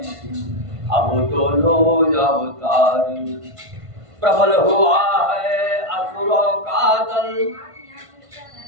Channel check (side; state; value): left; late; 1.5 ms